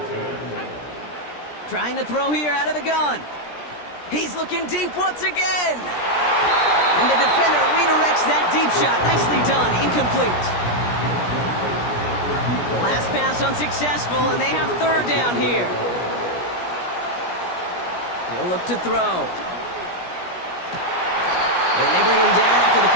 Trying to throw here out of the gun. He's looking deep once again. And the defender redirects that deep shot. Nicely done. Incomplete. Last pass unsuccessful, and they have third down here. He'll look to throw. And they bring him down after the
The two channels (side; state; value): right; late; 17 ms